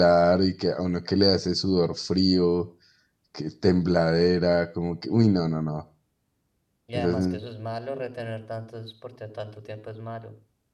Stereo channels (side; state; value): both; identical; correlation 1.00